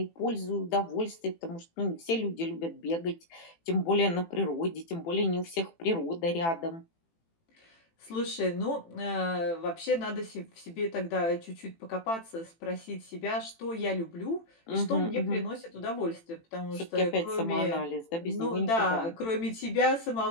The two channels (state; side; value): late; right; 18 ms